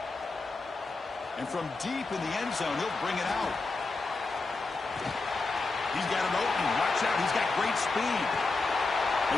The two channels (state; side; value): quieter; right; 3.7 dB